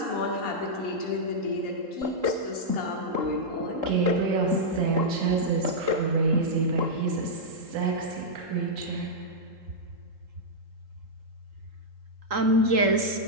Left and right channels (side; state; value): left; late; 3.8 ms